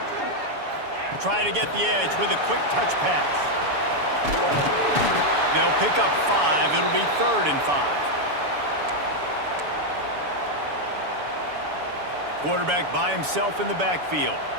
Trying to get the edge with a quick touch pass. They'll pick up 5. It'll be 3rd and 5. Quarterback by himself in the backfield.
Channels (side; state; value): left; late; 7.0 ms